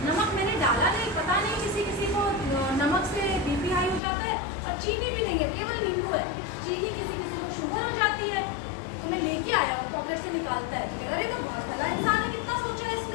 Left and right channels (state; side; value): drops out; right; at 4.0 s